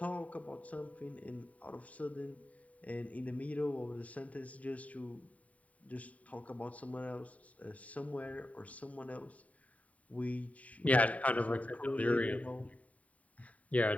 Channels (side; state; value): right; late; 0.069 ms